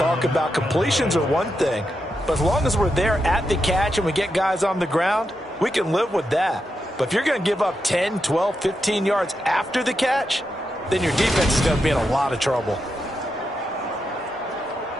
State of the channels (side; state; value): both; normal; correlation 0.85